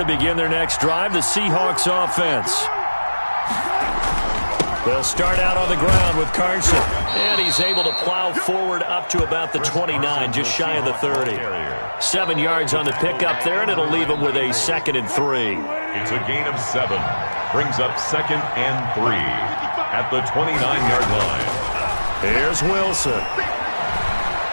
begin their next drive, the Seahawks offense. They'll start out on the ground with Carson. And he's able to plow forward up to about the 29, just shy of the 30. 7 yards on the pickup there, and it'll leave him with a 2nd and 3. It's a gain of 7. Brings up 2nd and 3 at the 29-yard line. Here's Wilson.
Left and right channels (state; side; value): inverted; both; correlation -1.00